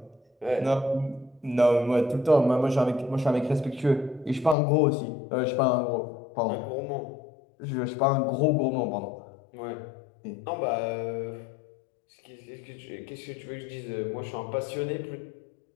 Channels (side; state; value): right; drops out; at 4.5 s